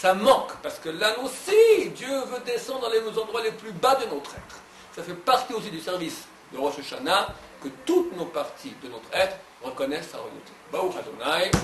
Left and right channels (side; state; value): both; identical; correlation 1.00